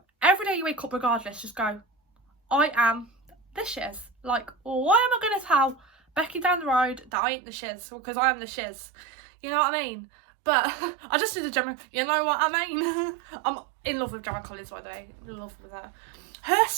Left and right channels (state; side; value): drops out; left; at 7.1 s